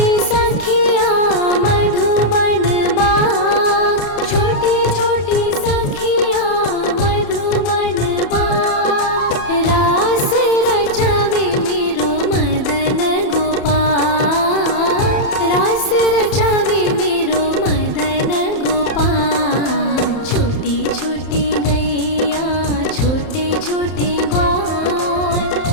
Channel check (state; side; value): late; right; 31 ms